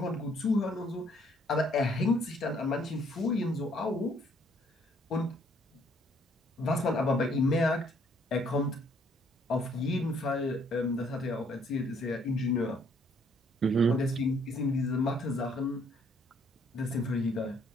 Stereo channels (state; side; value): normal; both; correlation 0.65